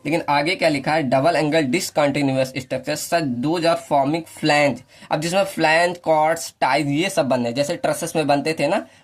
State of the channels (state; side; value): identical; both; correlation 1.00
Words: लेकिन आगे क्या लिखा है, double angle discontinuous structure such those are forming flange, अब जिसमें फ्लैंज कॉर्ड्स टाइज ये सब बन रहे, जैसे ट्रसेस में बनते थे ना